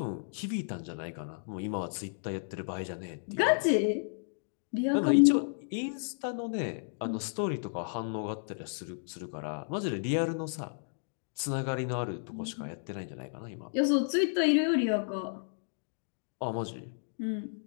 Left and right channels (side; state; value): right; silent; digital silence